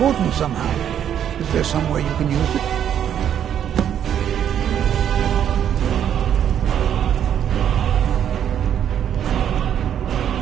somehow. Is there some way you can use it?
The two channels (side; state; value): left; quieter; 9.5 dB